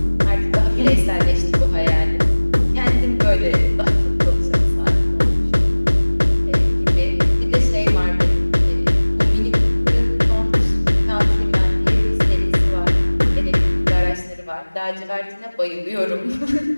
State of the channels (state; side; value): inverted; both; correlation -1.00